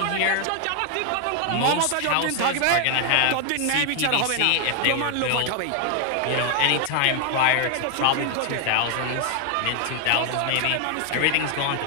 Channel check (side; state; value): both; different; correlation 0.00